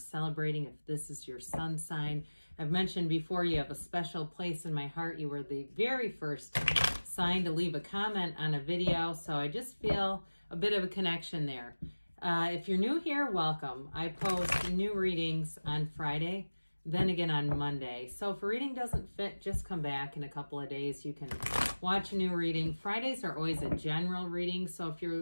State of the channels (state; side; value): inverted; both; correlation -1.00